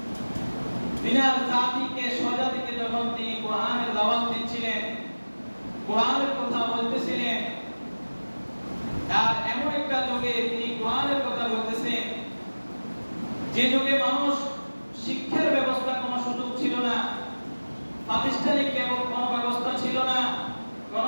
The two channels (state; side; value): inverted; both; correlation -1.00